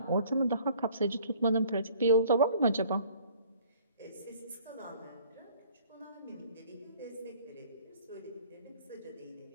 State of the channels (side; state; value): both; inverted; correlation -0.55